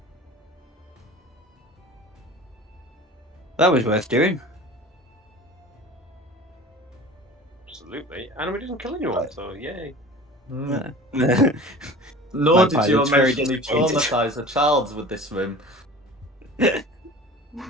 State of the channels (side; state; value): both; normal; correlation 0.40